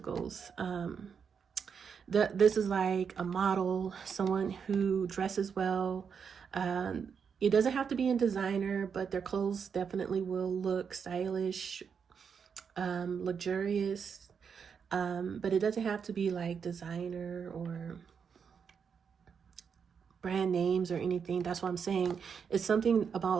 This is like a model, someone who dresses well. It doesn't have to be in designer, but their clothes definitely will look stylish, luxurious. But it doesn't have to be like designer or brand names or anything. That's what I'm saying. It's something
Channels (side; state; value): left; quieter; 6.6 dB